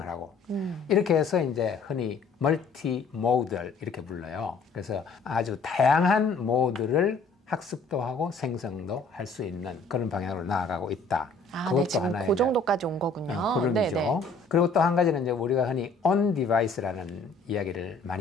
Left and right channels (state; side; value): quieter; right; 3.9 dB